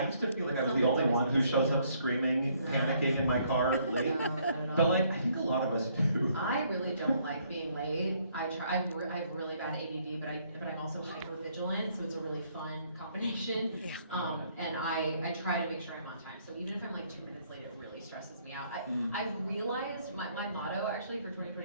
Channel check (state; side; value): inverted; both; correlation -0.67